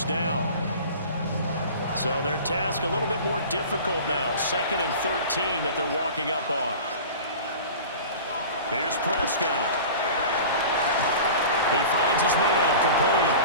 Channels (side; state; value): both; inverted; correlation -0.37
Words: down. So their task a little bit more difficult now. 2nd and 13 that they're walking up on. Here's Prescott. He finds his man complete.